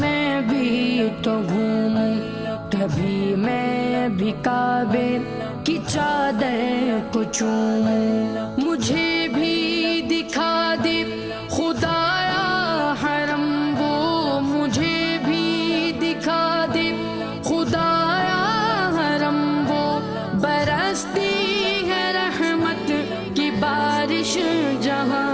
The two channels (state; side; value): noise; right; hum, 28 dB below the sound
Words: بھی تو گھوموں، کبھی میں بھی کعبے کی چادر کو چوموں، مجھے بھی دکھا دے خدایا حرم وہ، مجھے بھی دکھا دے خدایا حرم وہ، برستی ہے رحمت کی بارش جہاں،